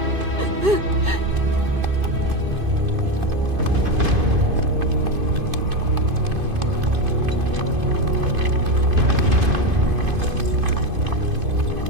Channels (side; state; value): left; late; 2.5 ms